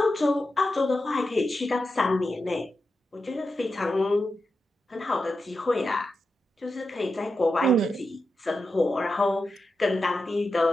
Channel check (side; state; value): both; normal; correlation 0.89